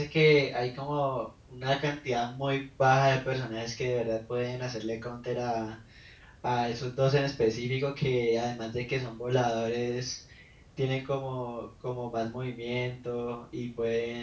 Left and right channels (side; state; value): both; identical; correlation 1.00